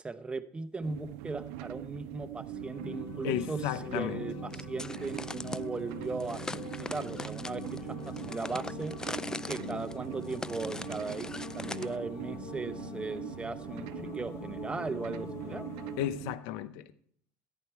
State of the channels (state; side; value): normal; both; correlation 0.52